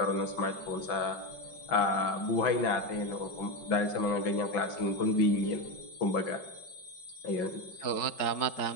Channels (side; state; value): right; late; 5.4 ms